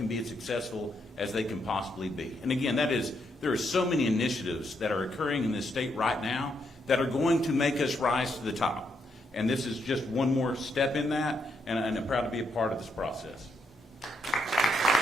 be as successful as they can possibly be. And again, there are so many initiatives that are occurring in this state right now that are going to make us rise to the top. And this is just one more step in that, and I'm proud to be a part of this process.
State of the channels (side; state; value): both; normal; correlation 0.78